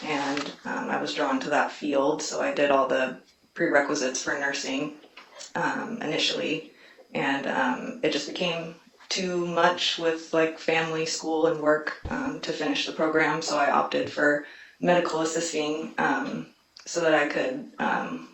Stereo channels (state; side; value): identical; both; correlation 1.00